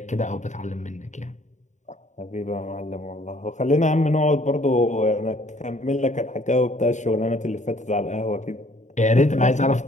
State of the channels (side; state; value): right; late; 0.35 ms